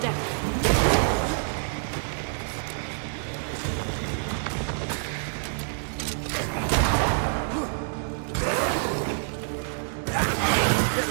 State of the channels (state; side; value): silent; left; digital silence